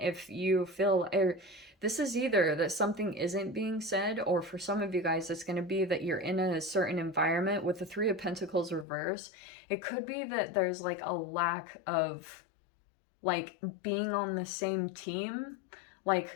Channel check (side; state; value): right; drops out; at 8.8 s